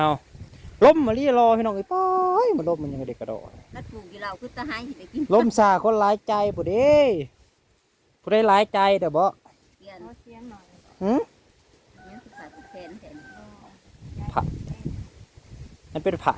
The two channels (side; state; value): both; identical; correlation 1.00